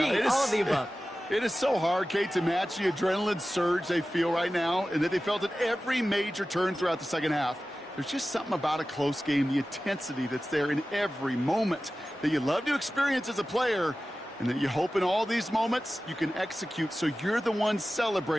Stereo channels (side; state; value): both; normal; correlation 0.95